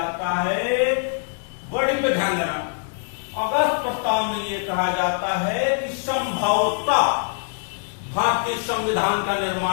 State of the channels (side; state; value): right; silent; digital silence